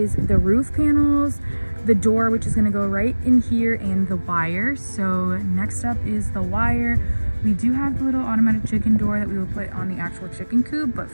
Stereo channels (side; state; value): both; inverted; correlation -1.00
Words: the roof panels, the door, which is gonna go right in here, and the wire. So next up is the wire. We do have the little automatic chicken door that we will put on the actual chicken coop, but